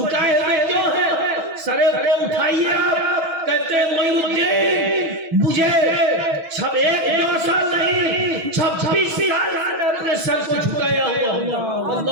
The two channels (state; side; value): late; left; 6.1 ms